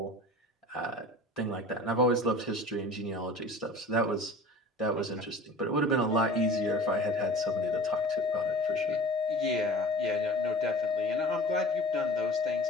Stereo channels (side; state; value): both; normal; correlation 0.41